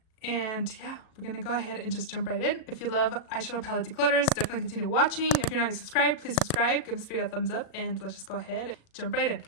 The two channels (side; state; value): right; late; 37 ms